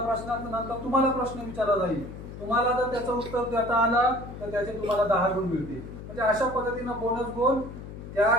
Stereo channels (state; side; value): noise; left; hum, 11 dB below the sound